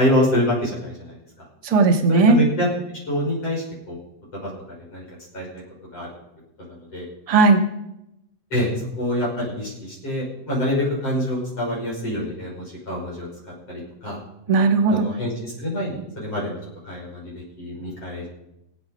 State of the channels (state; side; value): late; right; 8.2 ms